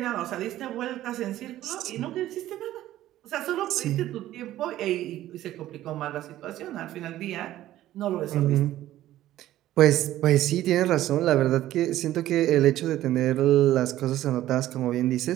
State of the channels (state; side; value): quieter; left; 13.9 dB